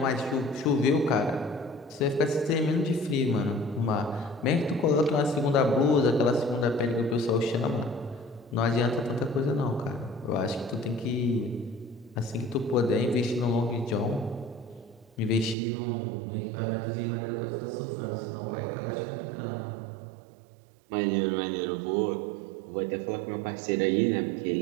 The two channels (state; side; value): drops out; left; at 15.6 s